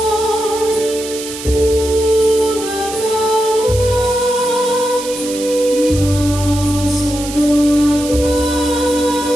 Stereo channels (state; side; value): noise; right; hiss, 10 dB below the sound